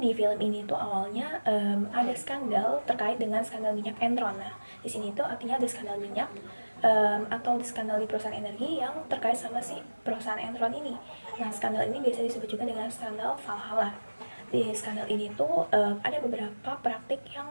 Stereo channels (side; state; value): both; inverted; correlation -1.00